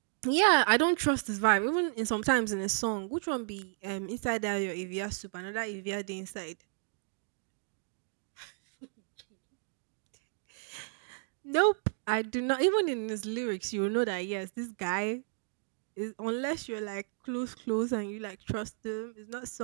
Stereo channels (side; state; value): left; silent; digital silence